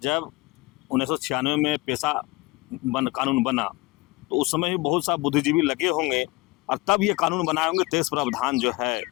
1996 में पेशा कानून बना तो उस समय भी बहुत सा बुद्धिजीवी लगे होंगे और तब ये कानून बनाए होंगे 23 प्रावधान जो है।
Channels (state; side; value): quieter; right; 21.6 dB